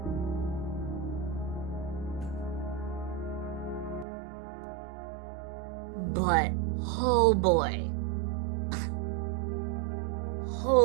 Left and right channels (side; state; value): left; drops out; at 4.0 s